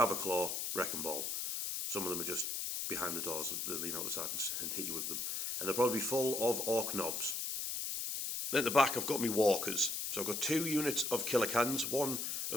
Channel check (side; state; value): left; noise; hiss, 2 dB below the sound